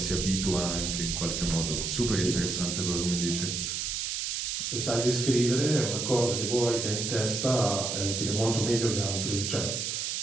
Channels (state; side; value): noise; right; hiss, 2 dB below the sound